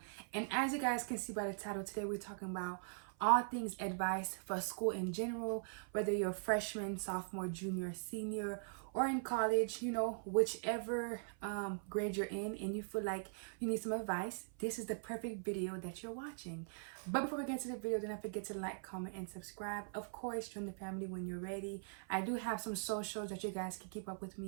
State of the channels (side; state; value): left; silent; 50 dB below the other